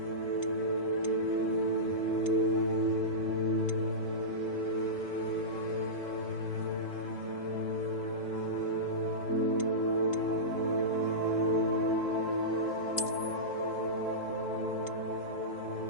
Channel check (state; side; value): late; right; 3.7 ms